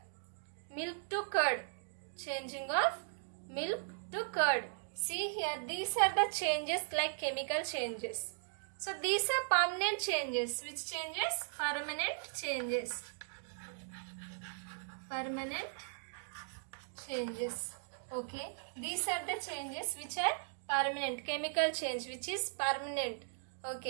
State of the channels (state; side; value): silent; left; digital silence